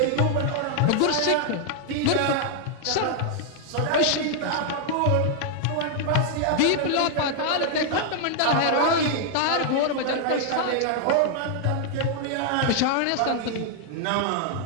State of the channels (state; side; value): different; both; correlation 0.00